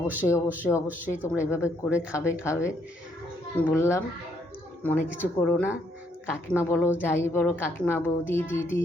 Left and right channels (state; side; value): normal; both; correlation 0.71